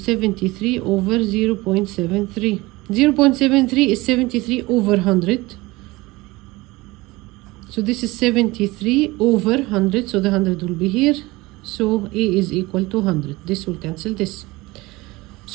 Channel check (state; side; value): quieter; left; 21.2 dB